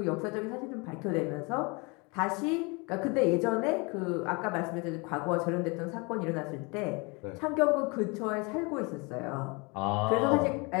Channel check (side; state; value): right; quieter; 29.1 dB